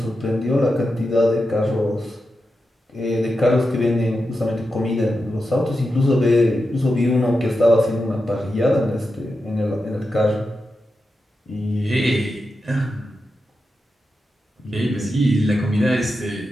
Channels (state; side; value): normal; both; correlation 0.89